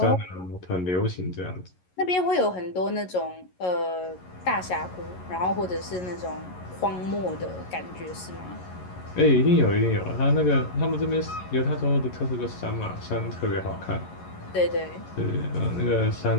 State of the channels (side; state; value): right; late; 11 ms